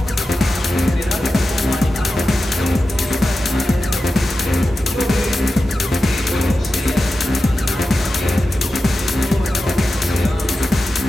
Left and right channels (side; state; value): both; normal; correlation 0.92